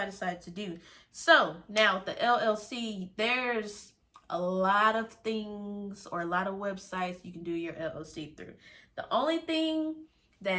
I decided to do. So now with the LLC, there's a lot of things or a lot of websites you can do your LLC through. The only thing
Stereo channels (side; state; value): both; identical; correlation 1.00